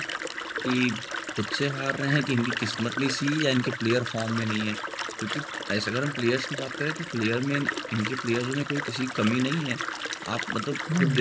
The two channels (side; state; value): both; identical; correlation 1.00